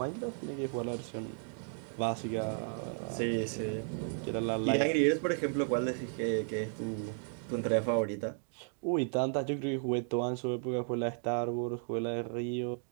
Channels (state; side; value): silent; left; 55 dB below the other